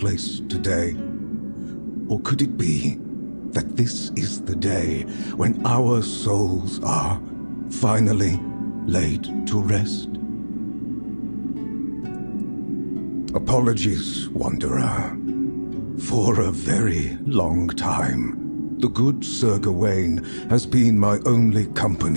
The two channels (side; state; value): both; inverted; correlation -1.00